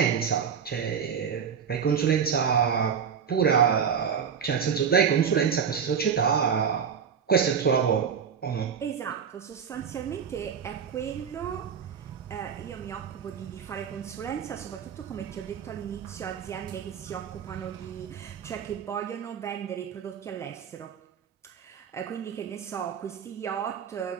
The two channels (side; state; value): left; quieter; 7.2 dB